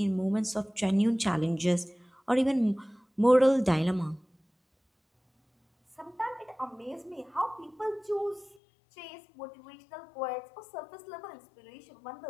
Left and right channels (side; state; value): right; drops out; at 8.6 s